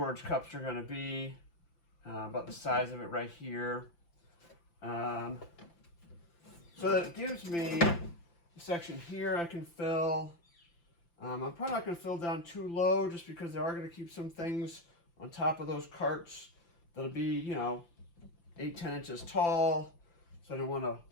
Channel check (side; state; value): right; late; 5.8 ms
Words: cups are going to be, about the size of it right here. So that it gives me a section here I can fill. I'm probably not going to fill down too low just because they are going to keep some things on top of those carts that'll be, 8-10 inches tall. So I don't want to